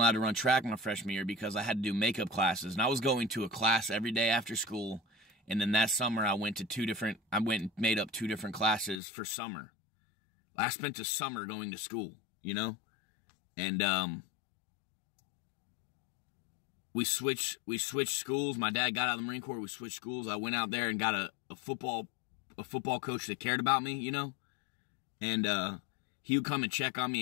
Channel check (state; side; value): drops out; right; at 9.0 s